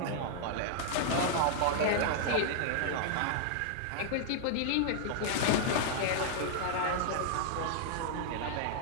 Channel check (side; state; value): both; different; correlation -0.01